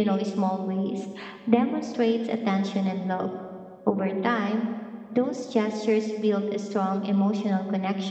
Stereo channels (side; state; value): both; identical; correlation 1.00